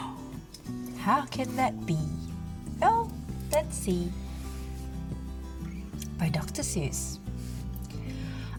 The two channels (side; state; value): both; identical; correlation 1.00